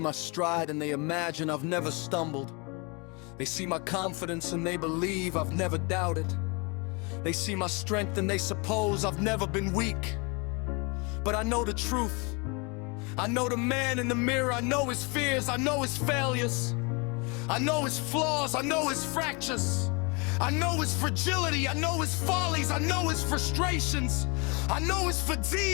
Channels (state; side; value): quieter; right; 30.4 dB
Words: stride and they imagine I've never stumbled. They see my confidence and they believe I've never doubted. They see my strength and they suppose I've never been weak. But I know the truth. I know the man in the mirror. I know his fears. I know his failures. I know his flaws, I know his fractures, I know his fragility, I know his follies, I know his frustrations, I know his